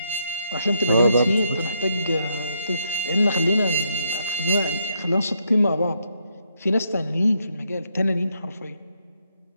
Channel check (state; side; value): inverted; both; correlation -0.76